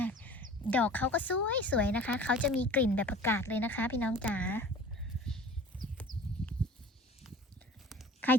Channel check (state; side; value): normal; both; correlation 0.42